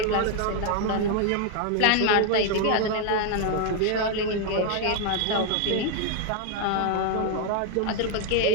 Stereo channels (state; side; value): different; both; correlation 0.00